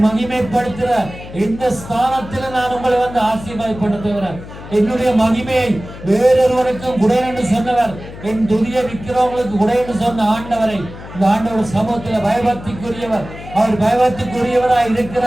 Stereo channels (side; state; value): left; noise; hum, 14 dB below the sound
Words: மகிமைப்படுத்துற இந்த ஸ்தானத்தில் நான் உங்களை வந்து ஆசீர்வாதப்படுத்துகிறேன். என்னுடைய மகிமையை வேறொருவருக்கும் குடை என்று சொன்னவர், என் துதியை விற்கிறவங்களுக்கு குடை என்று சொன்ன ஆண்டவரை இந்த ஆண்டவர் சமூகத்தில் பயபக்திக்குரியவர். அவர் பயபக்திக்குரியவராய்